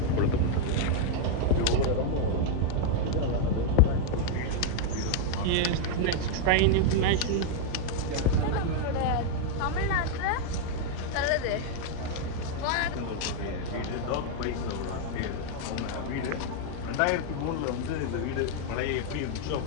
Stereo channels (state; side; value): different; both; correlation 0.00